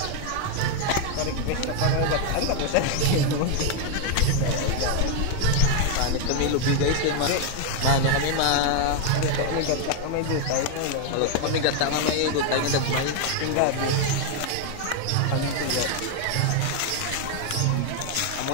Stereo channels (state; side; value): different; both; correlation 0.01